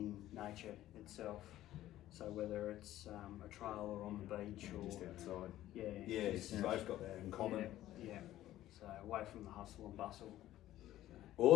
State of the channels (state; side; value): quieter; right; 14.0 dB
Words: in nature itself. So whether it's a trail or on the beach or Just outside. yeah, Yeah, just- you've both got that in common. yeah. So away from the hustle and bustle.